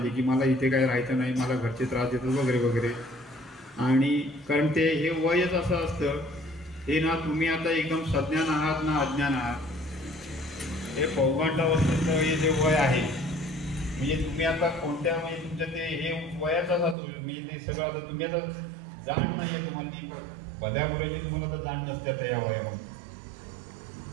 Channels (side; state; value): left; drops out; at 16.9 s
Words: की मला इथे काय राहायचं नाही, मला घरचे त्रास देतात वगैरे वगैरे. आणि कारण ते हे वयच असं असतं हे ना, तुम्ही आता एकदम सज्ञान आहात ना अज्ञान आहात. हे पौगंडावस्थेचं हे जे वय आहे म्हणजे तुम्ही आता कोणत्या म्हणजे तुमचं ते हे वयाचाच असतो म्हणजे ते सगळं आता तुम्ही आता जाण नाही आहे तुम्हाला ती बध्याबरोबर तुम्हाला आता जाण नसते आता या वयामध्ये.